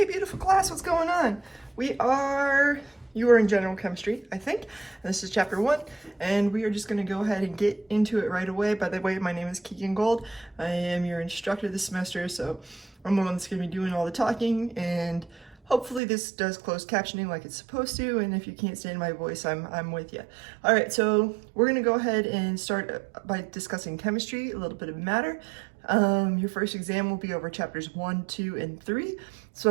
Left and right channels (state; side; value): drops out; left; at 16.0 s